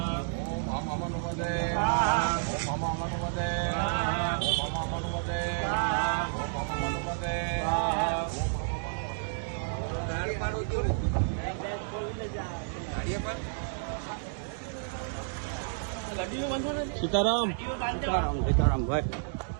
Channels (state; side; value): silent; left; digital silence